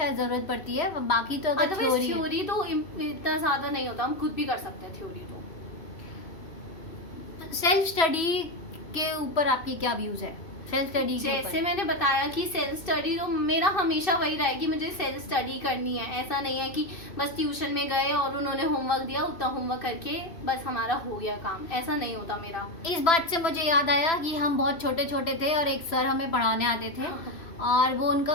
जरूरत पड़ती है। बाकी तो अगर अदरवाइज थ्योरी तो इतना ज्यादा नहीं होता, हम खुद भी कर सकते हैं थ्योरी। तो सेल्फ स्टडी के ऊपर आपके क्या व्यूज है? सेल्फ स्टडी जैसे मैंने बताया कि सेल्फ स्टडी तो मेरा हमेशा वही रहा है कि मुझे सेल्फ स्टडी करनी है। ऐसा नहीं है कि बस ट्यूशन में गए और उन्होंने होमवर्क दिया, उतना होमवर्क करके बस हमारा हो गया काम, ऐसा नहीं होता मेरा। इस बात से मुझे याद आया कि हम बहुत छोटे छोटे थे और एक सर हमें पढ़ाने आते थे और वो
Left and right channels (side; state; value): right; late; 2.6 ms